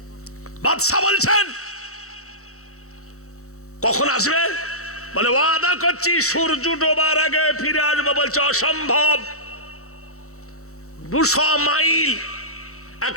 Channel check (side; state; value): right; late; 0.64 ms